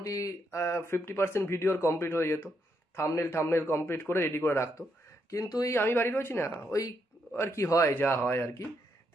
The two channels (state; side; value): normal; both; correlation 0.78